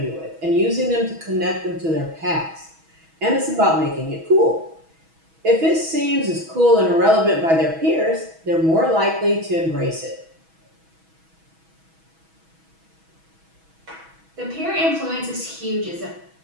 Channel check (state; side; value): late; left; 6.2 ms